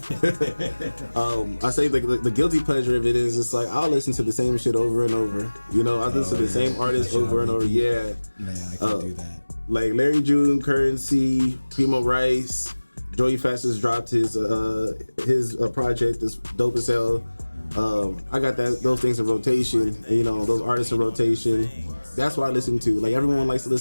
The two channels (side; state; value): both; inverted; correlation -1.00